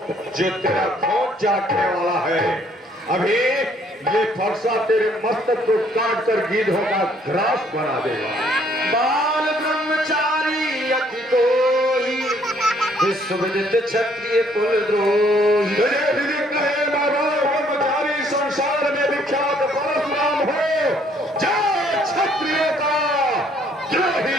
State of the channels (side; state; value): both; normal; correlation 0.64